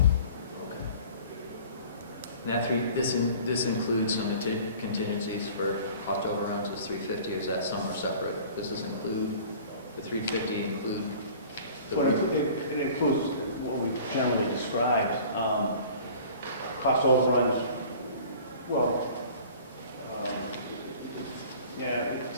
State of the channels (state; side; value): inverted; both; correlation -0.46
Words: this includes some contingencies for cost overruns is 350, or is that some are separate? Does this include, the 350 include the Well, it includes what we generally described, cost overruns, well, yeah,